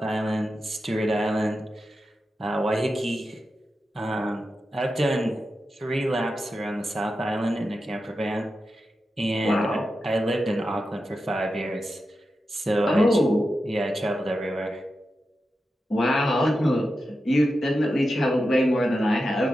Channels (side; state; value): both; normal; correlation 0.90